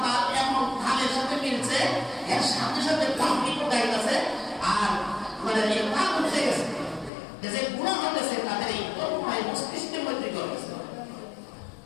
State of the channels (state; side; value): drops out; right; at 7.1 s